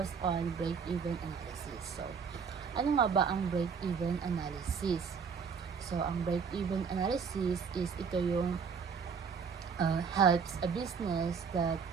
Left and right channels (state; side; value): quieter; left; 6.1 dB